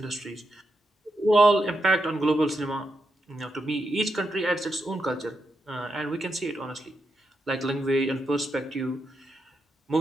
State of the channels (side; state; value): both; normal; correlation 0.84